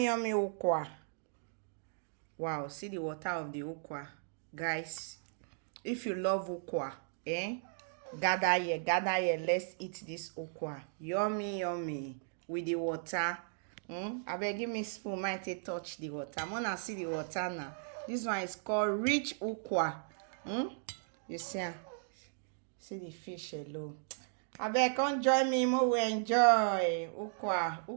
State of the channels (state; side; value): silent; left; digital silence